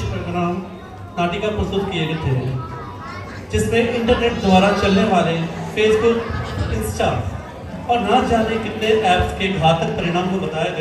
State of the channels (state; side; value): identical; both; correlation 1.00